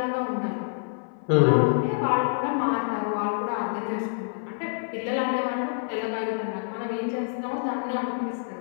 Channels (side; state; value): right; silent; 60 dB below the other